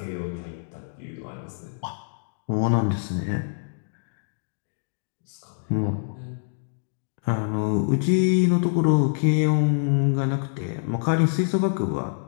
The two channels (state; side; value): silent; right; digital silence